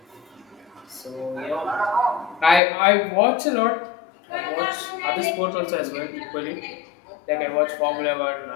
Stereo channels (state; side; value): drops out; right; at 2.6 s